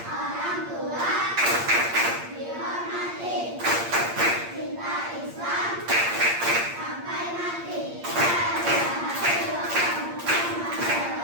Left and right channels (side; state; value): left; late; 8.6 ms